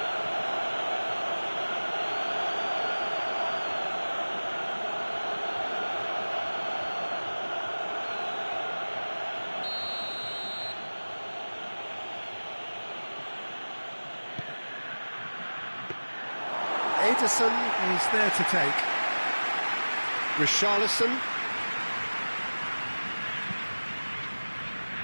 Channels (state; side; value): inverted; both; correlation -1.00